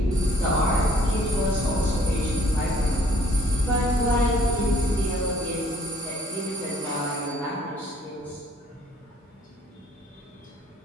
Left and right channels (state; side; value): normal; both; correlation 0.60